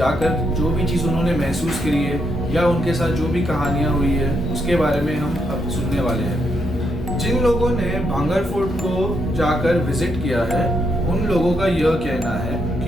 जो भी चीज़ उन्होंने महसूस करी है या उनके साथ जो भी कहानियाँ हुई है उसके बारे में हम अब सुनने वाले हैं। जिन लोगों ने भांगर फोर्ट को जाकर विजिट किया है, उन लोगों का यह कहना है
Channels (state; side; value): normal; both; correlation 0.78